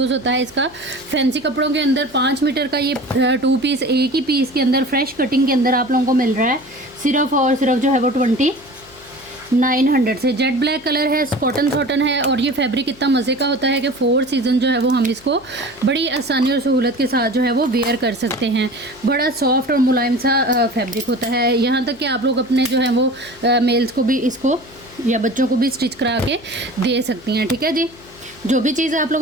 होता है इसका। फैंसी कपड़ों के अंदर 5 मीटर का ये 2 पीस एक ही पीस के अंदर फ्रेश कटिंग के अंदर आप लोगों को मिल रहा है सिर्फ और सिर्फ जो है वो 2900 से। जेट ब्लैक कलर है, कॉटन कॉटन है, और ये फैब्रिक इतना मज़े का होता है कि 4 सीज़न जो है वो हम इसको बड़ी आसानी और सहूलत के साथ जो है वो वेयर कर सकते हैं। बड़ा सॉफ्ट और मुलायम सा फैब्रिक होता है। यहाँ तक कि आप लोग अपने जो है वो मेल्स को भी इसको या बच्चों को भी स्टिच करा के दे सकती हैं। ठीक है जी। जो भी चीज़ आप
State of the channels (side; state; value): left; noise; hum, 24 dB below the sound